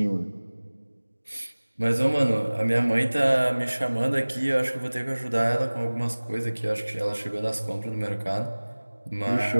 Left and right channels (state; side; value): inverted; both; correlation -1.00